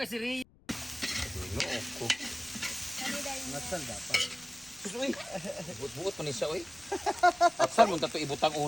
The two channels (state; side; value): noise; left; rumble, 28 dB below the sound